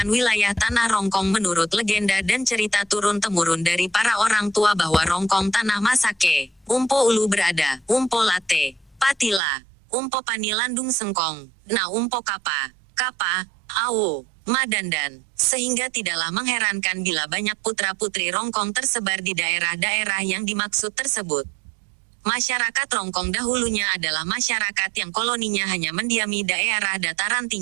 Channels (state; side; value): drops out; left; at 9.4 s